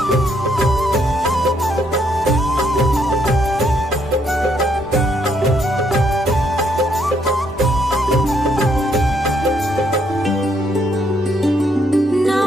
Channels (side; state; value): both; normal; correlation 0.72